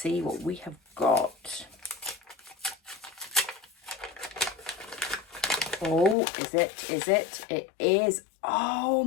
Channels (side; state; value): right; drops out; at 6.2 s